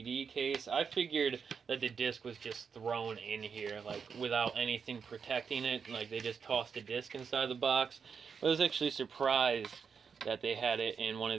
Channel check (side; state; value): left; quieter; 6.2 dB